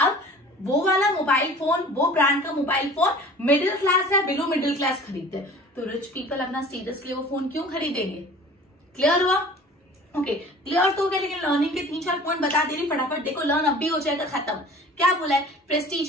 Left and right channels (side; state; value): both; normal; correlation 0.44